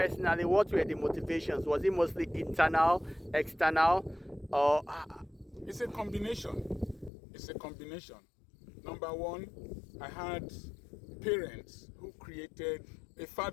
what were the motivations? Was it mostly internal, external, or It's a combination. It's a combination. Number one, I had parents who created, a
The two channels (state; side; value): drops out; right; at 7.1 s